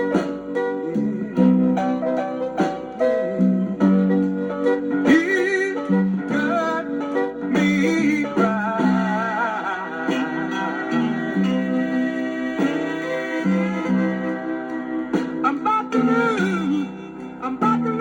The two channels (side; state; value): both; identical; correlation 1.00